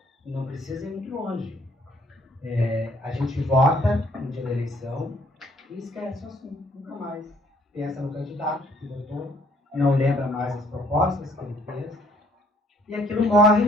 não precisa ir muito longe. A gente vota no dia da eleição e esquece o assunto, nunca mais. Pensa no candidato que votou, não lembra mais as propostas que ele fez, e aquilo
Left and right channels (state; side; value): normal; both; correlation 0.62